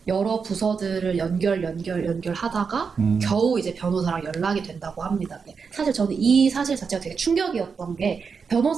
여러 부서들을 연결하다가 겨우 이제 변호사랑 연락이 된다고 합니다. 사실 저는 이 사실 자체가 되게 충격이었던 게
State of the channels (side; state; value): left; quieter; 5.6 dB